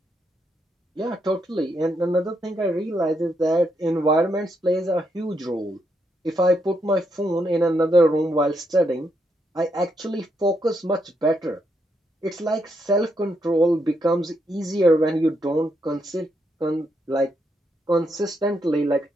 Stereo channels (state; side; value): normal; both; correlation 0.79